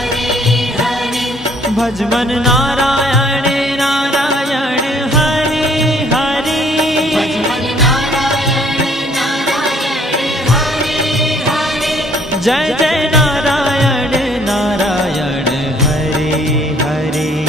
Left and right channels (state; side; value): normal; both; correlation 0.61